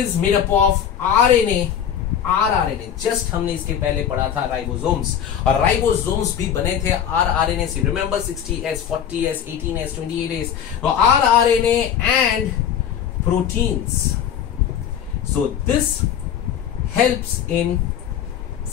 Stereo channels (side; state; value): right; quieter; 8.9 dB